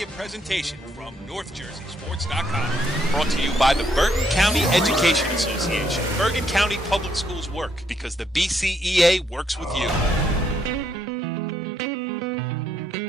presentation from NorthJerseySports.com. Brought to you by the Bergen County Education Association. Bergen County Public Schools work because the BCEA works with you.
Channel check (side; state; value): both; normal; correlation 0.73